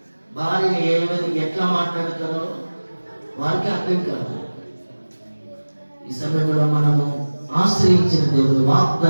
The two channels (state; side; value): inverted; both; correlation -1.00